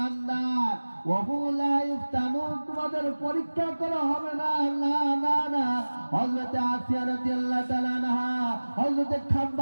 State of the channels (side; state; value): both; inverted; correlation -1.00